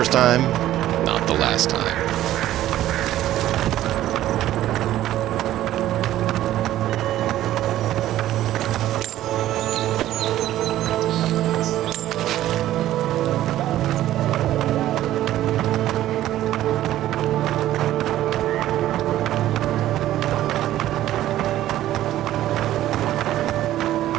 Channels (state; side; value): quieter; left; 13.6 dB